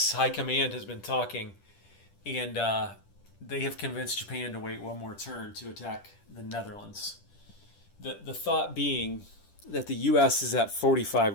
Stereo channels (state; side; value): late; right; 10 ms